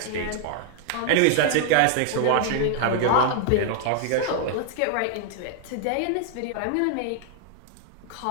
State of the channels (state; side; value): different; both; correlation 0.00